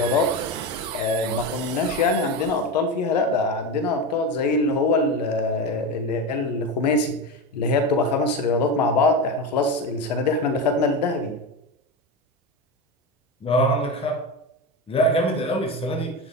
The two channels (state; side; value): normal; both; correlation 0.19